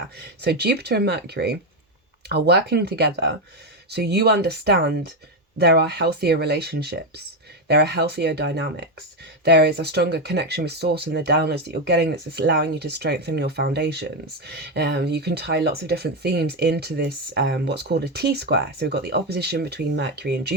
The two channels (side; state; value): both; normal; correlation 0.08